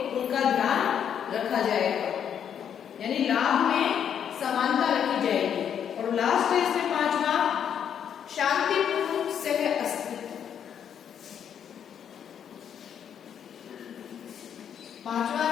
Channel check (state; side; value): quieter; right; 8.6 dB